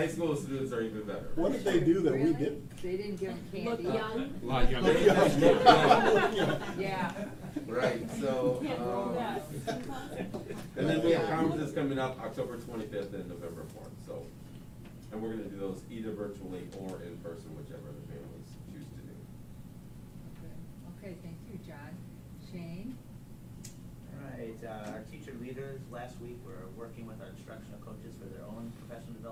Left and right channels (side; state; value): both; identical; correlation 1.00